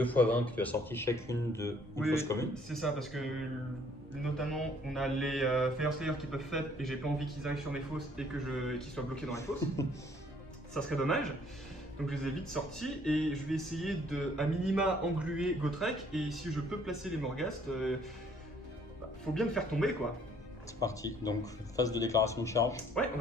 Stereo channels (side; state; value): both; normal; correlation 0.61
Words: x 20, puis tu as sorti chacune de une Oui, fosse commune. c'est ça, parce que notamment on a les Fire Slayer qui peuvent faire et j'ai pas envie qu'ils arrivent sur mes fosses et qu'ils soient bloqués dans les fosses. Ça serait dommage. Donc je les ai vite sortis et je vais essayer de, à minima, engluer Gotrek et si je peux placer les Morghast, faut bien le faire tomber quoi. C'est parti. Donc phase de déclaration de charge. Ouais, on